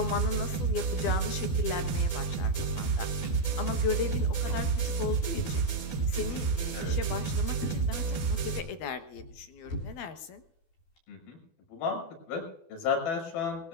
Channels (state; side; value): late; right; 12 ms